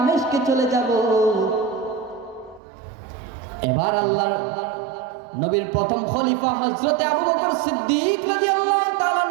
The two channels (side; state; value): left; drops out; at 2.6 s